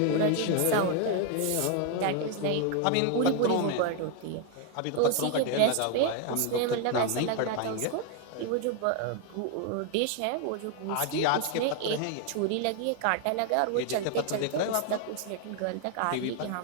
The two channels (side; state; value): both; different; correlation 0.00